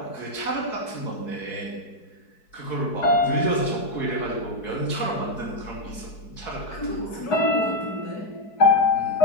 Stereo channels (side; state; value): right; late; 4.6 ms